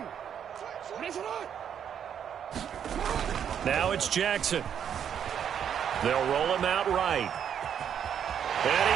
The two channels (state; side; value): quieter; left; 8.6 dB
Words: Now it's Jackson. They'll roll him out right. And